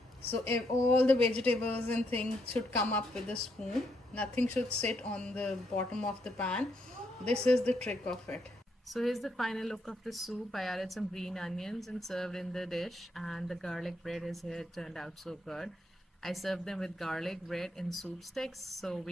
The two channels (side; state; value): both; normal; correlation 0.76